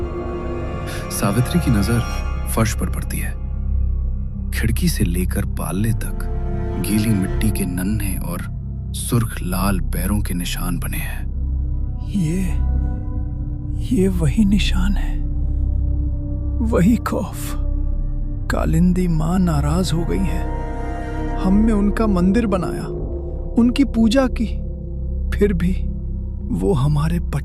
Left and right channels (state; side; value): identical; both; correlation 1.00